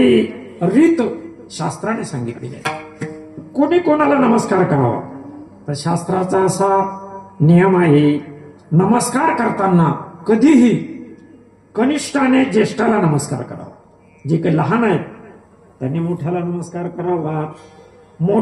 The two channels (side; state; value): both; identical; correlation 1.00